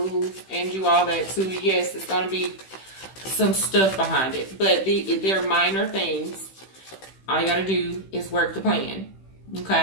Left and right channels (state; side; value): late; right; 16 ms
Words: and do all that, too, yes, it's going to be some stuff behind it. But they're minor things. All you got to do is work the plan.